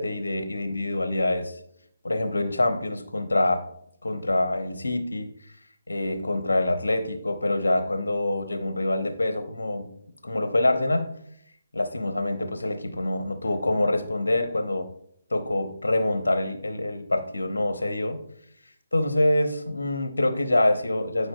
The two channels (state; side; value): inverted; both; correlation -0.94